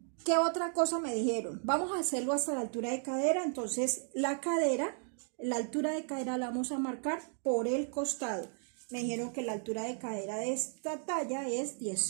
¿Qué otra cosa me dijeron? Vamos a hacerlo hasta la altura de cadera. Entonces la altura de cadera la vamos a marcar por el costado. Me dijeron que la altura de cadera de esta talla es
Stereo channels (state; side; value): silent; left; 55 dB below the other